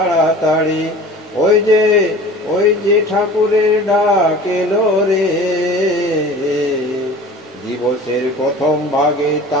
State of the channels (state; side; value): normal; both; correlation 0.41